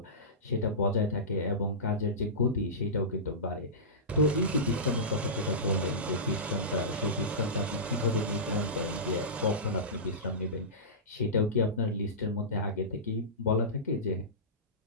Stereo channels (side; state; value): both; normal; correlation -0.19